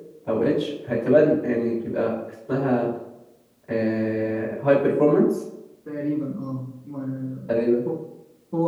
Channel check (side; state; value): both; identical; correlation 1.00